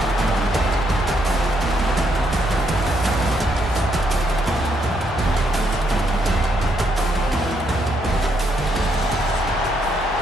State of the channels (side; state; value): left; noise; hum, 12 dB below the sound